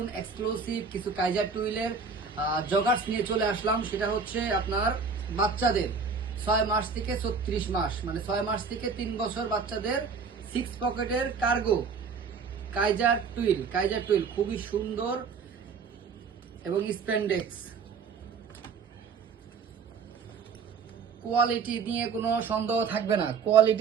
এক্সক্লুসিভ কিছু কাইজার টুইলের জগার্স নিয়ে চলে আসলাম। সেটা হচ্ছে আপনার বাচ্চাদের 6 মাস থেকে 36 মাস, মানে 6 মাস থেকে 3 বছর বাচ্চাদের 6 পকেটের কার্গো কাইজার টুইল খুবই সুন্দর এবং স্প্যান্ডেক্স কোয়ালিটি নিয়ে কোনো সন্দেহ থাকবে না।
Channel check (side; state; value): left; quieter; 5.4 dB